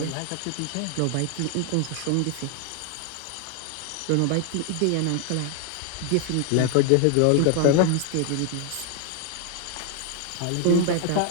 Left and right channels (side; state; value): both; different; correlation 0.00